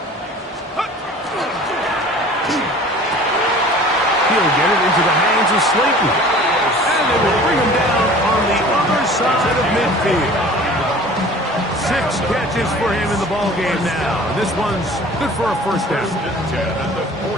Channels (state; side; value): normal; both; correlation 0.45